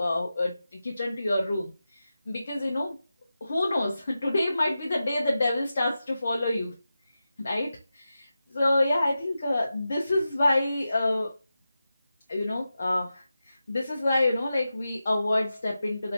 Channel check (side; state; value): both; inverted; correlation -0.92